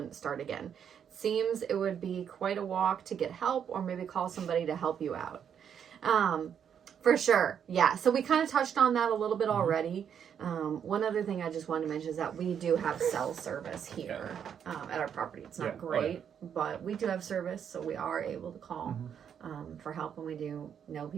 start again? Seems it would be quite a walk to get help, or maybe call somebody to help you out. For sure. Yeah. So we kind of touched on that a little bit already. One other thing I just wanted to mention is that we do have cell service here at our property. It's not great, but we do have service, so we are able to call for help, and we do know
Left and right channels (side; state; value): left; quieter; 8.2 dB